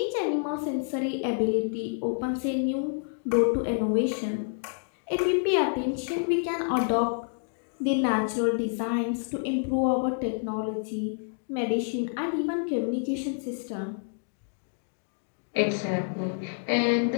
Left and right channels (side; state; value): right; silent; 59 dB below the other